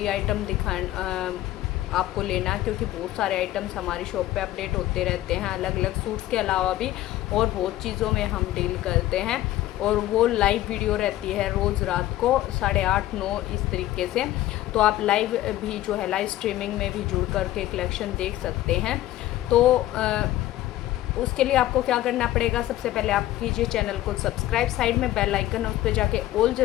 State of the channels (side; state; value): right; quieter; 14.9 dB